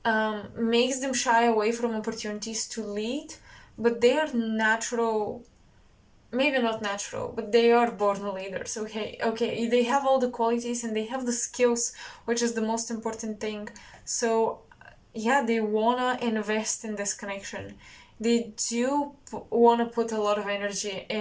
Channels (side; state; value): both; identical; correlation 1.00